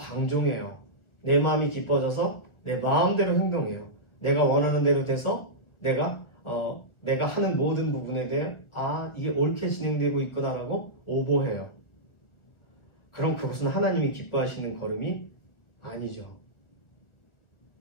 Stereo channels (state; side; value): late; right; 1.1 ms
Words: 내 마음이 기뻐져서 내 마음대로 행동해요. 내가 원하는 대로 돼서 내가 하는 모든 부분에 대해 이게 옳게 진행되고 있구나라고 오버해요. 그럼 그것은 하나님이 기뻐하시는 걸음이 아니죠.